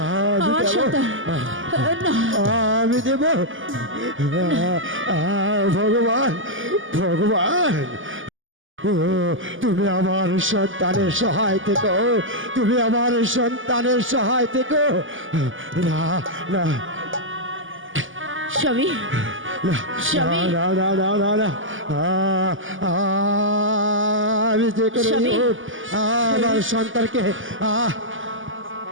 আমার সন্তান না আমি দেব ভগবান ভগবান তুমি আমার সন্তানের সহায় থেকো তুমি আমার সন্তানের সহায় থেকো না না স্বামী না স্বামী। না না না না না আমি যে করে স্বামী। হোক আমার সন্তানকে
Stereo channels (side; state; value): left; late; 0.58 ms